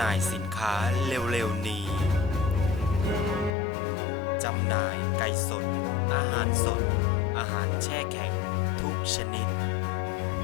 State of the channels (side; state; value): right; drops out; at 3.6 s